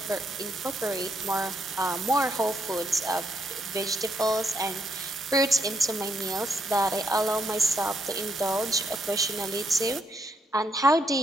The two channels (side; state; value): both; normal; correlation 0.76